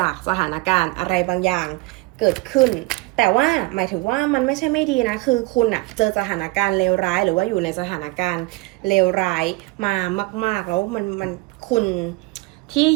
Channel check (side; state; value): left; quieter; 23.2 dB